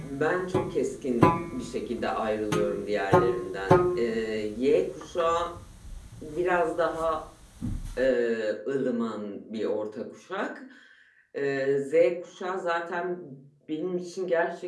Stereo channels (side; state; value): both; identical; correlation 1.00